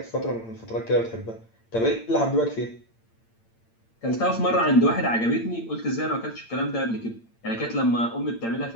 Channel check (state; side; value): late; right; 8.8 ms